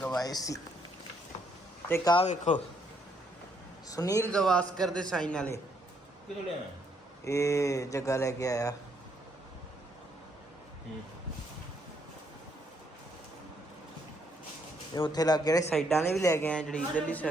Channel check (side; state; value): both; normal; correlation 0.72